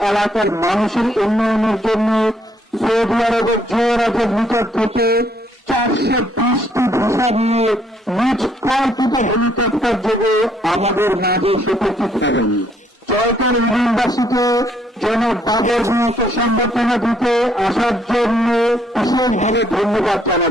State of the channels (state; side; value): normal; both; correlation 0.68